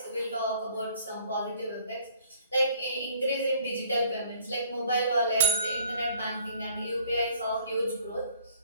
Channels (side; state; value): both; inverted; correlation -0.57